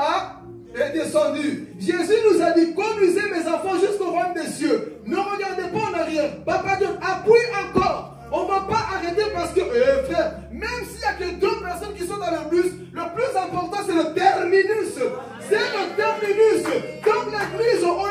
est descendu. Jésus nous a dit, conduisez mes enfants jusqu'au royaume des cieux. Ne regardez pas en arrière. Papa Dieu, appuie encore. On ne va pas arrêter parce que, frère, même s'il n'y a que 2 personnes qui sont dans le bus, le plus important c'est le terminus. C'est le terminus. Dans l'église, on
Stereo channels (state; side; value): identical; both; correlation 1.00